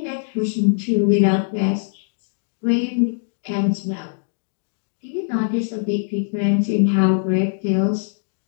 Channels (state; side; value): silent; right; digital silence